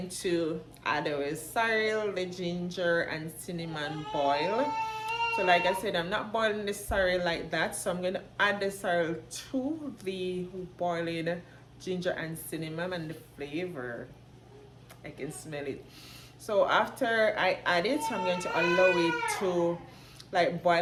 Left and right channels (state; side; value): identical; both; correlation 1.00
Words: to add our sorrel, the ginger and cinnamon boil. So like I said, I'm not boiling the sorrel like that, so I'm going to add the sorrel to the boiling ginger and cinnamon, and the flavor, I can smell it. So after I add it, I'm going to allow it to like